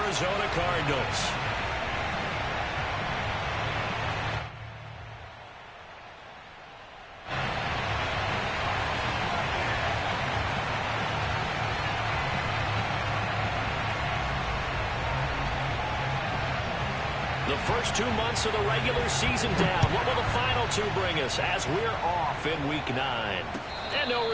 Cardinals. The first 2 months of the regular season down. What will the final two bring us as we're off in Week 9? And no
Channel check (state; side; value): identical; both; correlation 1.00